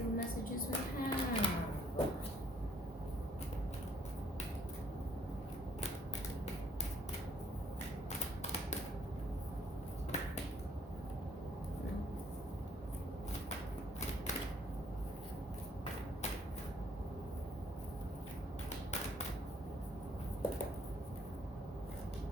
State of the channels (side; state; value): both; normal; correlation 0.64